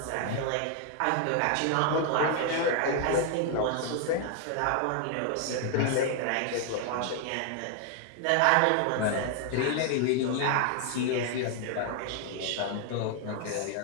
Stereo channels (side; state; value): both; different; correlation 0.00